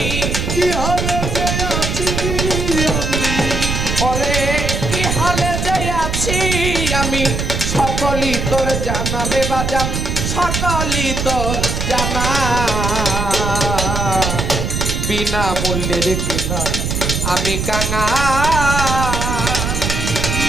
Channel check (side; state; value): right; noise; rumble, 1 dB below the sound